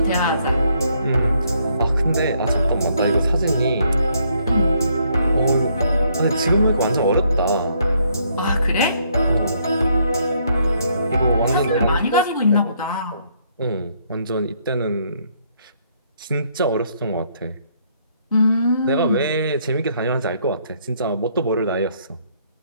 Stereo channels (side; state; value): both; inverted; correlation -0.70